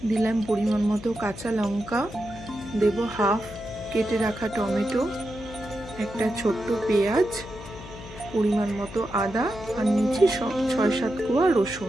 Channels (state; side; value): noise; left; hum, 14 dB below the sound